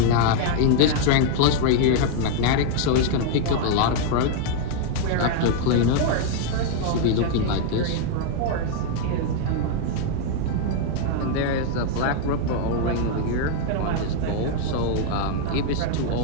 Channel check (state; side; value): different; both; correlation 0.00